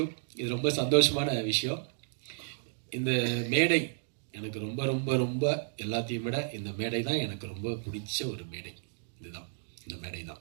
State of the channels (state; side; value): silent; left; digital silence